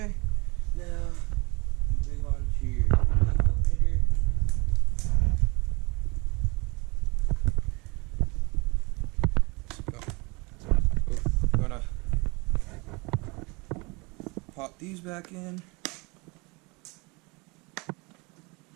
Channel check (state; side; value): quieter; left; 27.4 dB